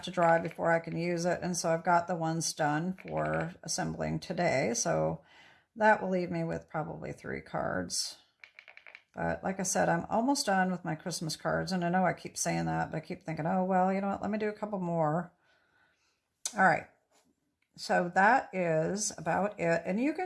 to dry before I can use it. And so I've got the ones done for assembling today. So that will leave me with probably 3 cards. But like I said, I'm almost done with my Christmas cards. And I know I keep saying that, but I keep thinking, oh, well, you know what? Let me do a couple more. All right. So that is about it. And you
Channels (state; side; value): identical; both; correlation 1.00